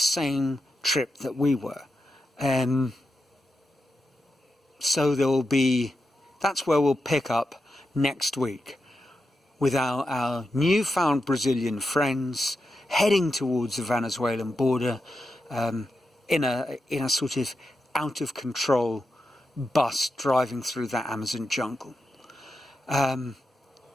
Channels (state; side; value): normal; both; correlation 0.88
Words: trip that we were. So that's where we'll pick up next week, with our newfound Brazilian friends heading towards the Venezuelan border in a sort of out of control bus driving through the Amazon jungle. And